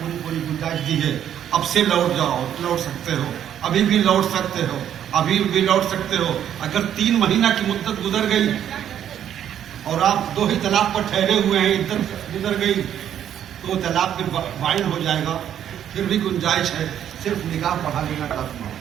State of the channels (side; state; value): left; quieter; 10.0 dB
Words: پوری گنجائش دی ہے، اب سے لوٹ جاؤ، لوٹ سکتے ہو، ابھی بھی لوٹ سکتے ہو، ابھی بھی لوٹ سکتے ہو۔ اگر 3 مہینہ کی مدت گزر گئی اور آپ 2 ہی طلاق پر ٹھہرے ہوئے ہیں، عدت گزر گئی تو وہ طلاق پھر فائن ہو جائے گا، پھر بھی گنجائش ہے، صرف نکاح پڑھا لینا کافی ہے۔